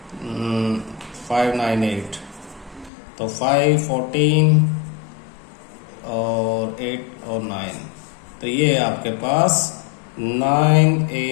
598, तो 5 14 और 8 और 9, तो ये आपके पास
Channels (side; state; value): right; drops out; at 2.9 s